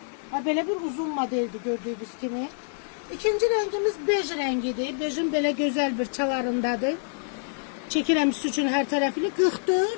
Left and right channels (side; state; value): right; silent; digital silence